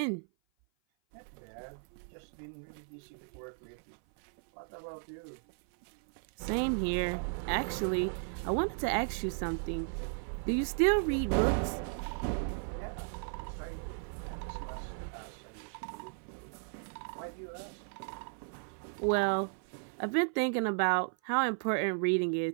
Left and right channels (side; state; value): left; silent; 54 dB below the other